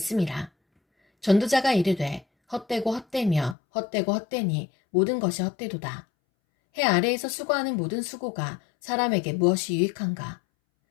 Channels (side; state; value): right; drops out; at 3.6 s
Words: 전도자가 이르되 헛되고 헛되며 헛되고 헛되니 모든 것이 헛되도다. 해 아래에서 수고하는 모든 수고가 사람에게 무엇이 유익한가?